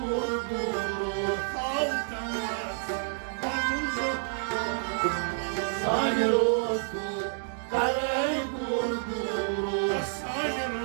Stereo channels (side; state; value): left; silent; digital silence